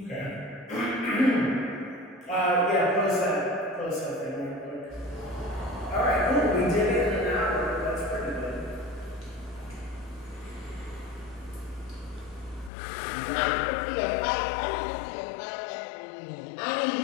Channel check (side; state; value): right; drops out; at 12.7 s